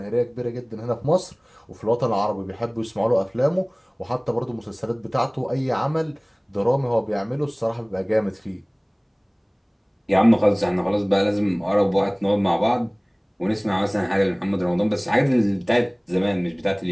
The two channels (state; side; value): identical; both; correlation 1.00